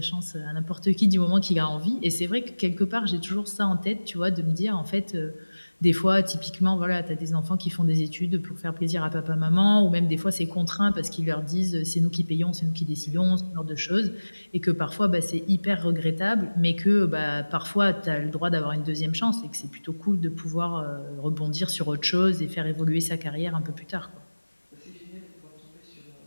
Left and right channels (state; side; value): inverted; both; correlation -1.00